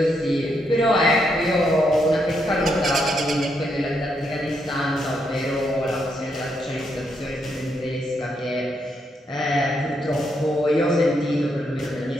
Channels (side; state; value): both; normal; correlation 0.78